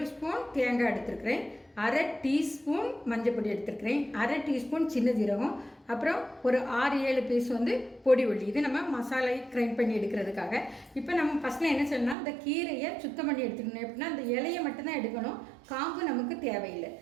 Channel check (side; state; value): left; drops out; at 12.2 s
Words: ஸ்பூன் தேங்காய் எடுத்துருக்கிறேன், 1/2 டீஸ்பூன் மஞ்சள் பொடி எடுத்துருக்கிறேன், 1/2 டீஸ்பூன் சின்ன ஜீரகம், அப்புறம் ஒரு 6-7 பீஸ் வந்து பொடி உள்ளி. இது நம்ம மசாலை கிரைண்ட் பண்ணி எடுக்கிறதுக்காக. இப்போ நம்ம ஃபஸ்ட்டில் என்ன செய்யணும்னா, இந்த கீரையை சுத்தம் பண்ணி எடுத்துக்கணும். எப்படின்னா அந்த இலையை மட்டும்தான் எடுக்கணும், காம்பு நமக்கு தேவையில்லை.